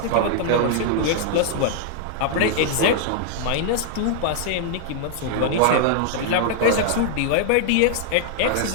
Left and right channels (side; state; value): both; different; correlation -0.01